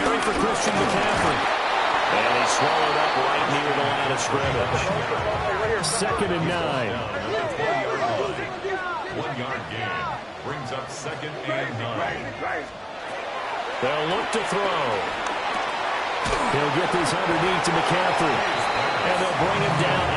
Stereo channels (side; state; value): both; identical; correlation 1.00